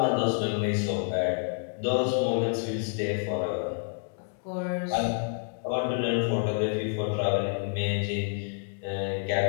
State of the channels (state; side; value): silent; right; digital silence